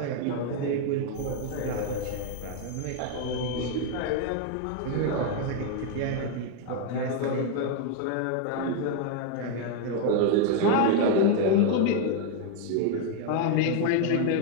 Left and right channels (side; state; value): both; different; correlation 0.01